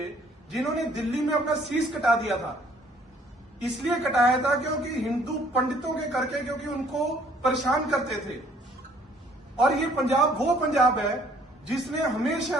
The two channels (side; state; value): both; normal; correlation 0.61